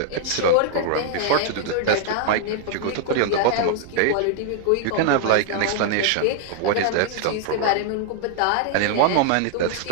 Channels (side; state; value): both; different; correlation 0.00